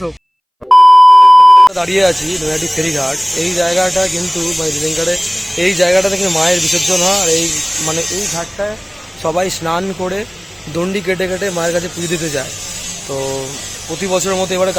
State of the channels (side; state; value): both; identical; correlation 1.00